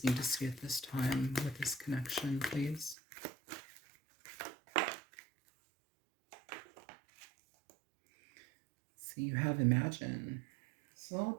need to see at this time with this connection, please? So you have Imagine. It's all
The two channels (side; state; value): left; drops out; at 3.0 s